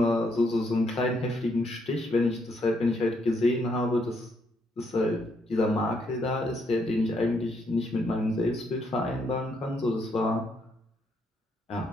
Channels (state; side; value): normal; both; correlation 0.74